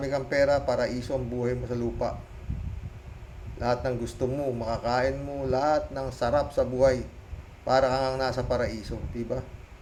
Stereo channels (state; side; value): identical; both; correlation 1.00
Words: kang pera, paraiso ang buhay mo sa lupa. Lahat ng gusto mo, makakain mo, lahat ng sarap sa buhay. Para kang nasa paraiso, diba?